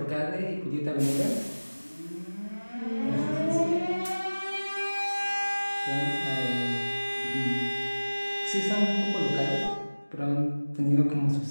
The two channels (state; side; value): inverted; both; correlation -1.00